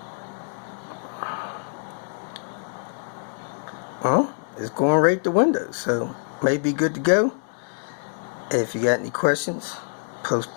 Well, it's going right to Windows, so may be good to go. If you got any questions,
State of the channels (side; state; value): right; silent; 61 dB below the other